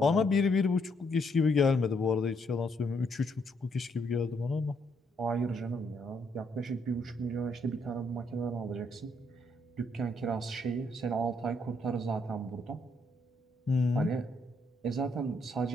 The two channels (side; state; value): both; normal; correlation 0.73